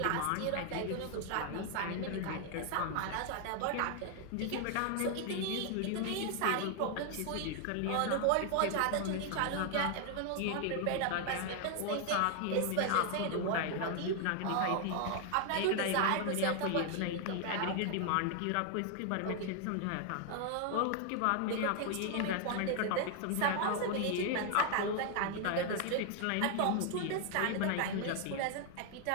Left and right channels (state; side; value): different; both; correlation 0.00